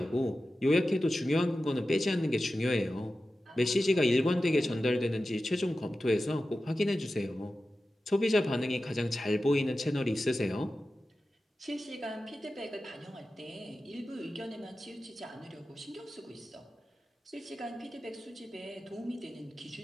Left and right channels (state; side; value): normal; both; correlation 0.94